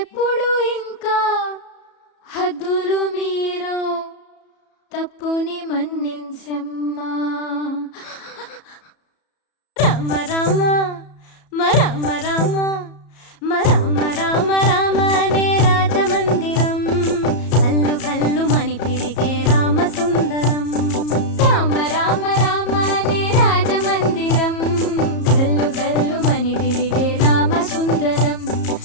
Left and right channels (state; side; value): late; right; 34 ms